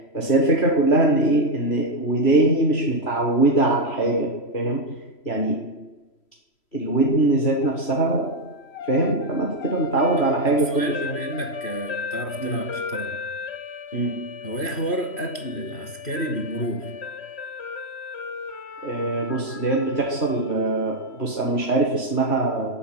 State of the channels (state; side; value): late; right; 3.1 ms